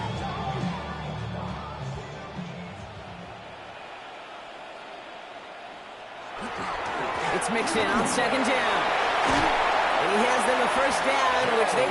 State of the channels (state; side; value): identical; both; correlation 1.00